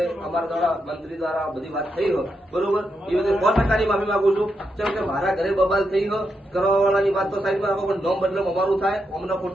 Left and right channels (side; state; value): both; normal; correlation 0.83